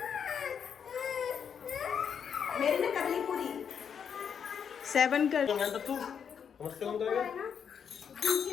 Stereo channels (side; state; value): right; quieter; 7.4 dB